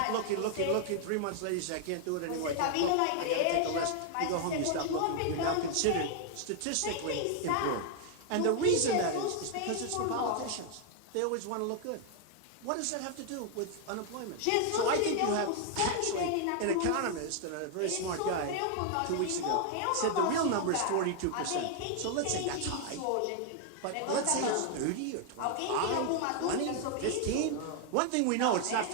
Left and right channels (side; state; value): both; different; correlation 0.00